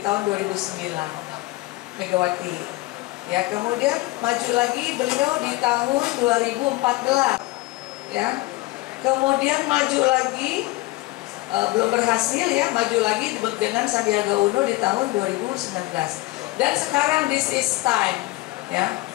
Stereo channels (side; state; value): right; quieter; 20.1 dB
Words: 2009, Megawati. Ya, kemudian maju lagi beliau di tahun 2014. Ya. Kemudian maju lagi belum berhasil ya, maju lagi dengan Sandiaga Uno di tahun 2019. Dan sekarang this is time, ya.